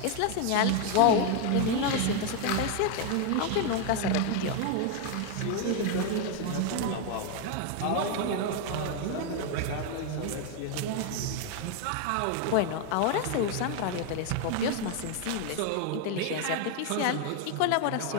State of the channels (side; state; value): both; different; correlation 0.01